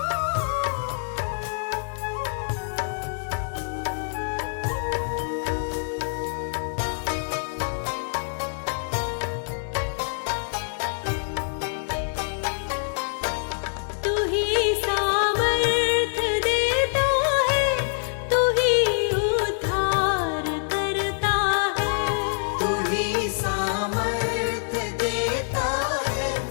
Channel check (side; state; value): right; silent; 61 dB below the other